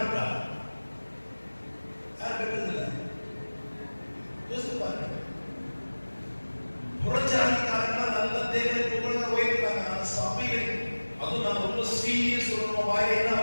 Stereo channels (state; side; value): inverted; both; correlation -1.00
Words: யார் பெற்றதில்லை? யோசித்து பாருங்க. புறஜாதிக்காரர்கள் நல்ல தேவனை புகழ்ந்து உயர்த்துறாங்க. ஆனா சபைகள், அதுவும் நான் ரொம்ப சீரியஸ் சொல்றோம், வாயில என்ன